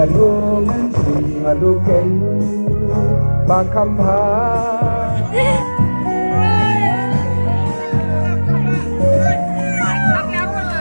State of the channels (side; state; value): both; inverted; correlation -1.00